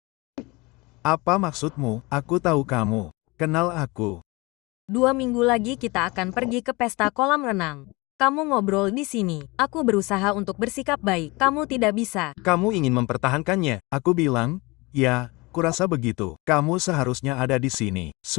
Apa maksudmu? Aku tahu kamu. Kenal aku. 2 minggu lagi kita akan pergi ke pesta kolam renang. Kamu ngobrol di sini. Aku berusaha untuk bersikap baik. Kamu tidak bisa. Kamu ingin mempertahankannya. Aku bilang, ya, kurasa begitu. Kamu seharusnya ada di sini.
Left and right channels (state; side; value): quieter; right; 24.5 dB